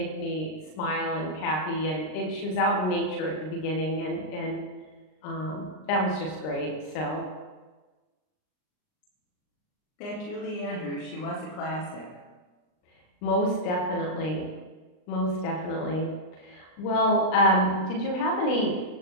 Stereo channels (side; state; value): right; late; 39 ms